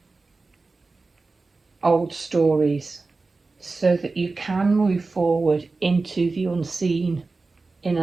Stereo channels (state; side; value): quieter; left; 3.7 dB